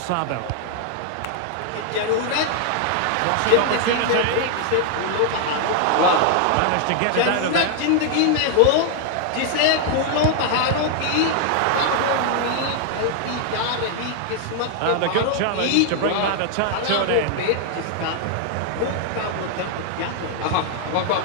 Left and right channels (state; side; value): different; both; correlation 0.00